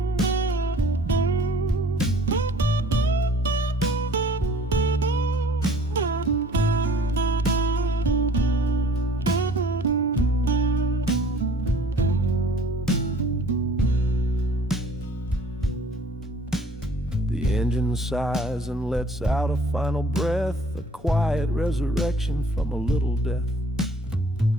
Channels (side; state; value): both; normal; correlation 0.52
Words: The engine sighs and lets out a final breath, a quiet resurrection from a little death.